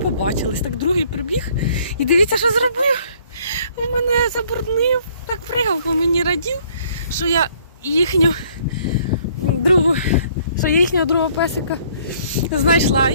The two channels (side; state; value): both; inverted; correlation -0.61